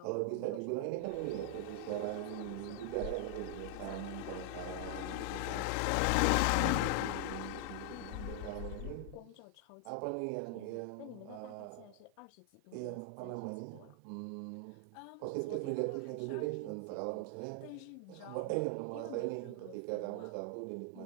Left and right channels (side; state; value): both; different; correlation 0.00